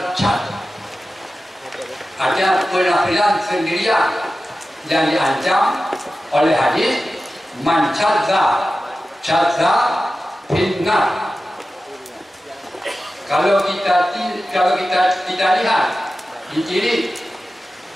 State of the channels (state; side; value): normal; both; correlation 0.94